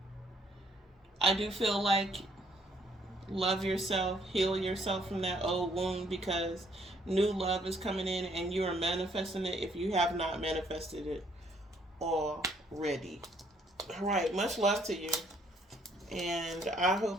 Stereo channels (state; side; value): normal; both; correlation 0.66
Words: I do feel like love yourself, heal yourself from that old wound, because new love is coming in and you are manifesting it if you have not manifested it already. All right, much love to you. And I